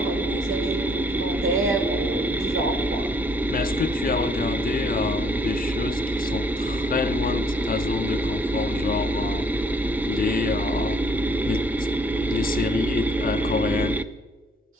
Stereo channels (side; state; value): both; normal; correlation 0.63